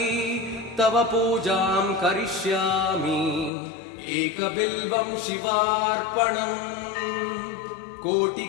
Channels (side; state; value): right; drops out; at 3.5 s